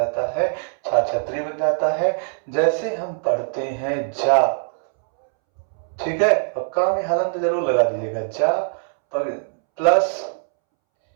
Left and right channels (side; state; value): left; silent; 64 dB below the other